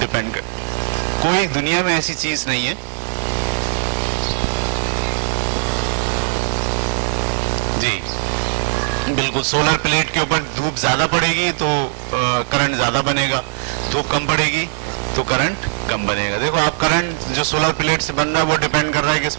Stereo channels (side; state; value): left; silent; 56 dB below the other